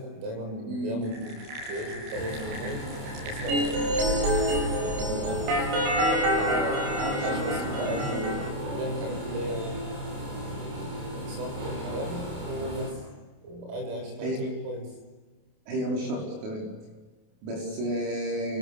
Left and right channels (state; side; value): late; left; 28 ms